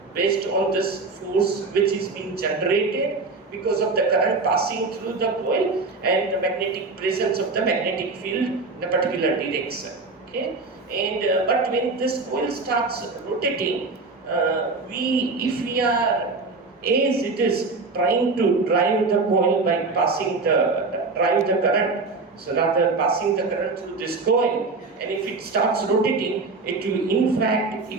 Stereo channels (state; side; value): quieter; left; 3.8 dB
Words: based on this force which is being generated because of the current passing through the coil and the magnetic presence of the magnetic field in a particular direction. Okay, and but when this coil starts rotating, if we are, as it is trying to drive the coil by passing drive the current, so rather passing the current through this coil, and if it starts rotating, it will, in fact,